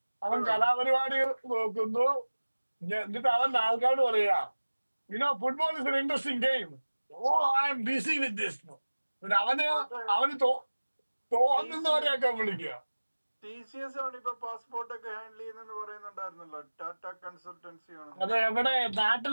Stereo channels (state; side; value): inverted; both; correlation -1.00